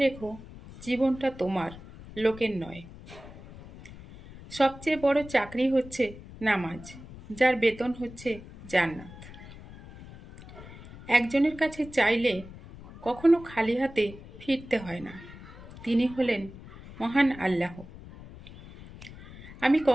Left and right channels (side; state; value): left; noise; rumble, 16 dB below the sound